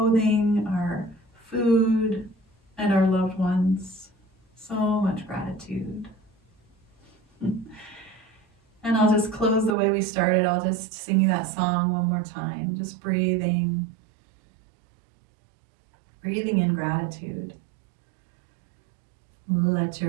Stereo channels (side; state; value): left; drops out; at 9.8 s